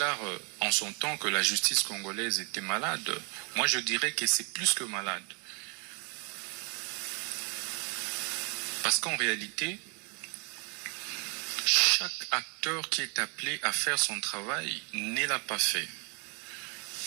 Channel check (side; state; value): left; quieter; 35.6 dB